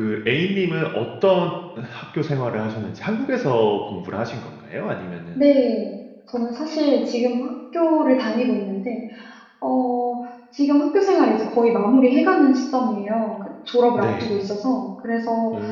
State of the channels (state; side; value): identical; both; correlation 1.00